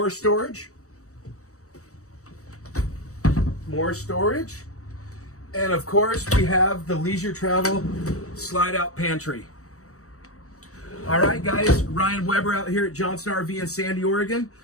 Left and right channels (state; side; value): late; right; 0.65 ms